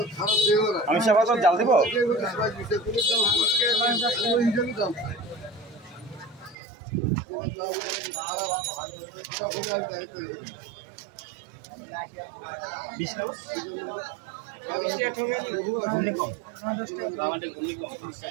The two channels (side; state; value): left; drops out; at 6.6 s